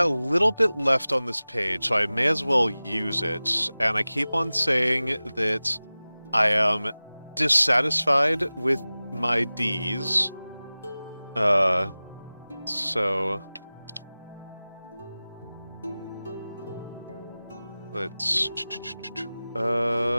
a little bit left on this page, so I may as well use it. And I keep on saying that I am dissatisfied with my Ds. So let's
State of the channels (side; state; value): both; inverted; correlation -0.98